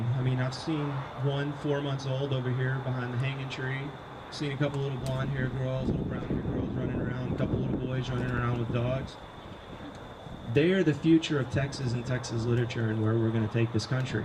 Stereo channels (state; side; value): identical; both; correlation 1.00